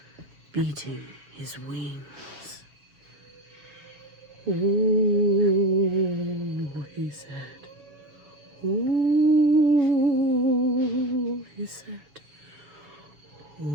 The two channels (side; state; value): left; late; 6.6 ms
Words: beating his wings. "Ooh," he said. "Ooh," he said.